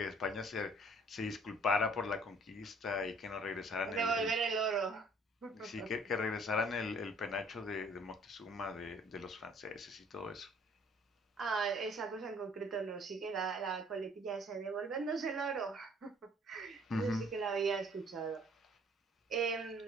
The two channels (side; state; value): both; normal; correlation 0.57